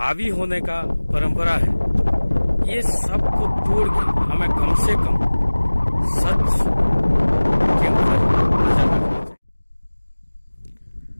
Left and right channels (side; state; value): both; inverted; correlation -1.00